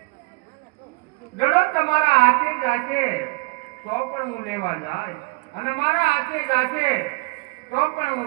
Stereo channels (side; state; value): left; quieter; 28.7 dB